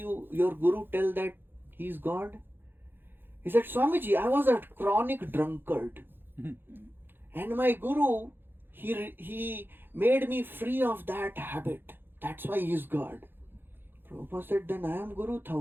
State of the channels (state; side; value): late; left; 0.10 ms